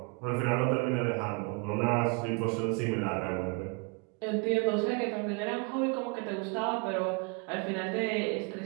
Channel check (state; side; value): quieter; left; 32.0 dB